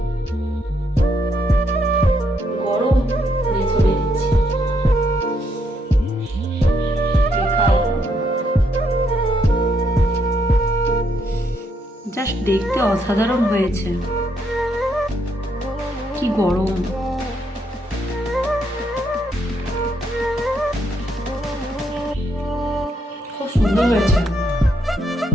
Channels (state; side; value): normal; both; correlation 0.75